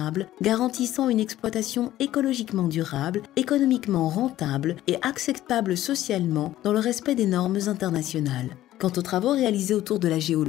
garantissant une exploitation écologiquement durable, économiquement rentable et acceptable socialement dans le respect des normes internationales. Quant aux travaux réalisés autour de la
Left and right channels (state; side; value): quieter; right; 14.1 dB